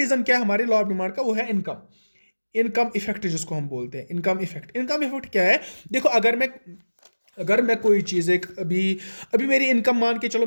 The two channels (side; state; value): both; inverted; correlation -1.00